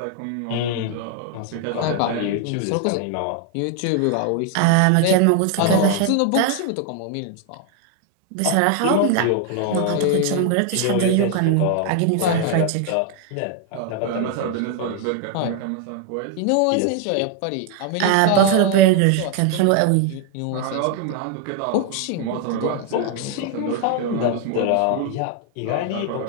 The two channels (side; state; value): both; different; correlation 0.01